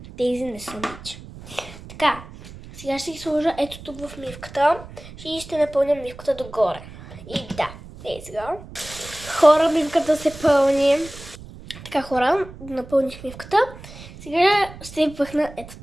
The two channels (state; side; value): noise; right; rumble, 16 dB below the sound